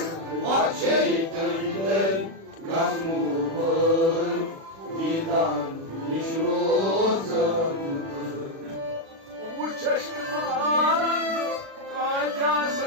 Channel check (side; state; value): left; late; 36 ms